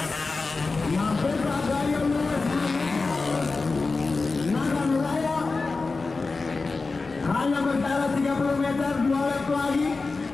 Mampukah Gaya Lewis? Nagar Raya hanya berjarak 30 meter, 2 lap lagi.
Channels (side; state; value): right; quieter; 3.9 dB